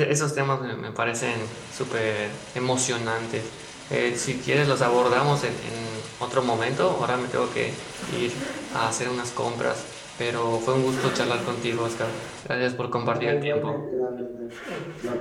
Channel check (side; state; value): both; identical; correlation 1.00